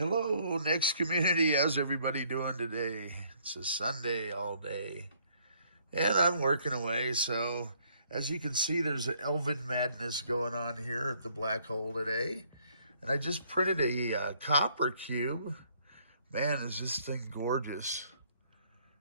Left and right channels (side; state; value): both; inverted; correlation -0.65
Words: Hello, Next community. How's everybody doing today? It's a Sunday all day, and I'm working away. So, as you can see, there's an Elven madness going on here at the black hole today. And I just printed a copper cube. Man, is this thing gorgeous.